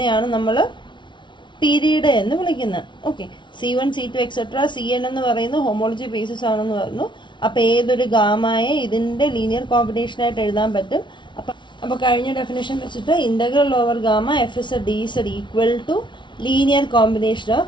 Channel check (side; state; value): right; late; 0.23 ms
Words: നമ്മൾ പീരീഡ് എന്ന് വിളിക്കുന്നത്. Okay, C1 C2 etcetera CN എന്ന് പറയുന്നത് ഹോമോളജി ബേസിസ് ആണെന്ന് പറഞ്ഞു. അപ്പോൾ ഏതൊരു ഗാമയെ ഇതിൻ്റെ ലീനിയർ കോമ്പിനേഷനായിട്ട് എഴുതാൻ പറ്റും. അപ്പോൾ കഴിഞ്ഞ ഡെഫിനേഷൻ വെച്ചിട്ട് integral over gamma F Z D Z equal to linear combination